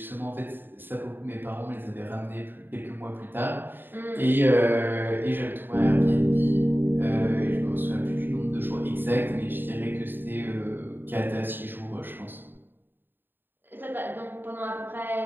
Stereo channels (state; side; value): late; left; 0.095 ms